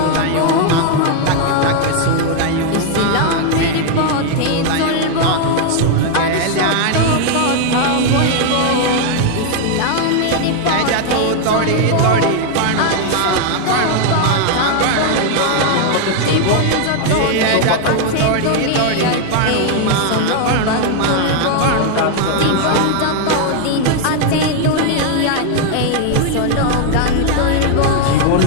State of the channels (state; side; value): different; both; correlation 0.00